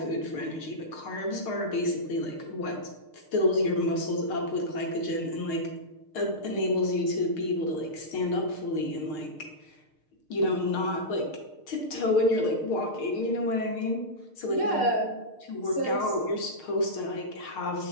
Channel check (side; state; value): right; late; 6.6 ms